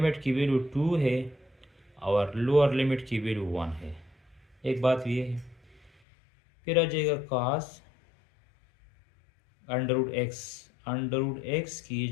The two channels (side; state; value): right; drops out; at 5.9 s